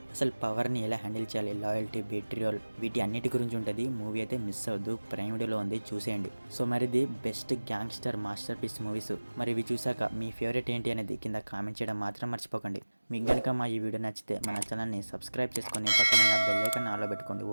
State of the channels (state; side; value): inverted; both; correlation -1.00